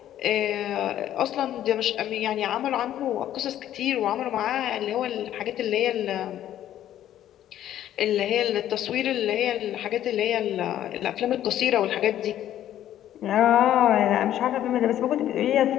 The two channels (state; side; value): quieter; right; 11.9 dB